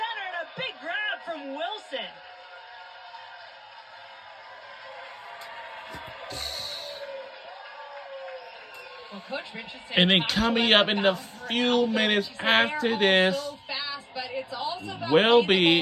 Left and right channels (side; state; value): both; identical; correlation 1.00